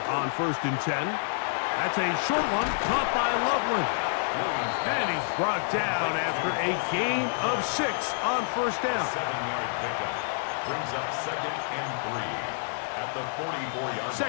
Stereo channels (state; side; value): silent; right; 59 dB below the other